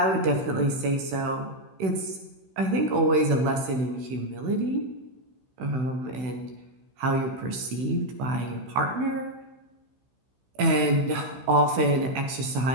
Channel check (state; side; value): late; left; 16 ms